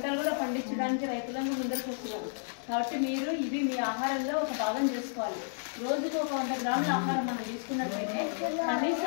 కూడా పండించడానికి రైతులను ముందరకు వస్తున్నారు. కాబట్టి మీరు ఇవి మీ ఆహారంలో ఒక భాగం చేసుకోవాలి. రోజుకు ఒక 100 గ్రాముల ఆహారం మనం తీసుకున్నట్లయితే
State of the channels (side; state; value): right; silent; digital silence